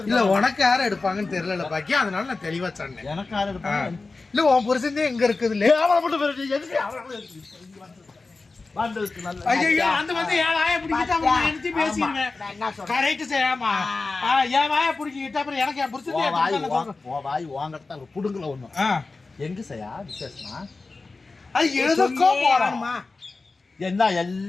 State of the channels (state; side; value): quieter; right; 3.8 dB